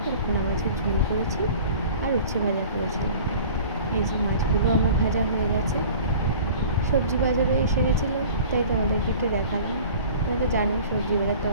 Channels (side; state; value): both; inverted; correlation -0.44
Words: করে পোনা মাছের ঝোল করেছি, আর উচ্ছে ভাজা করেছিলাম। এই যে মাছগুলো আমার ভাজা হয়ে গেছে। সবজি বাজারও এসে গেছিলো, তাই তোমাদেরকে একটু দেখালাম। তোমরা তো জানো সবজি বাজার